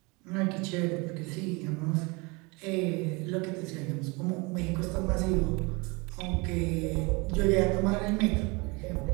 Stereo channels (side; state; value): left; quieter; 27.3 dB